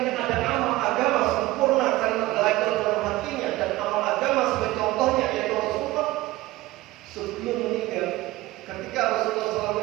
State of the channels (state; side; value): quieter; left; 18.3 dB